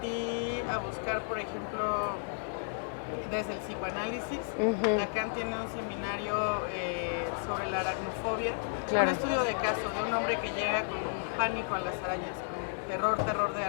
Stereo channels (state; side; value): silent; right; digital silence